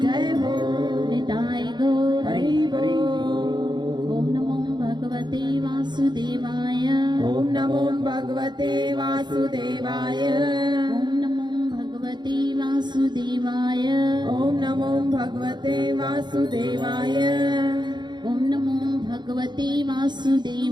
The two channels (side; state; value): left; late; 0.21 ms